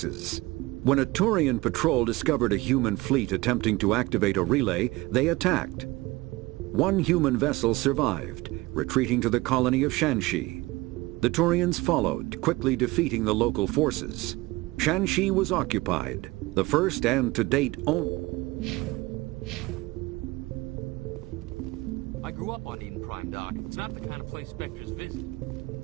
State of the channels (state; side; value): quieter; left; 21.1 dB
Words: When a Turian patrol discovered a human fleet attempting to activate a relay, they attacked. One human vessel survived, retreating to the colony of Shanxi. The Turians followed, quickly defeating the local forces. Shanxi was occupied, the first and to date only. I grew up on Eden Prime, Doc. It's not the kind of place Spectres visit.